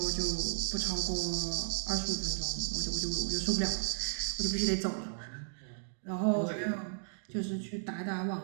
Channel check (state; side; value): silent; left; digital silence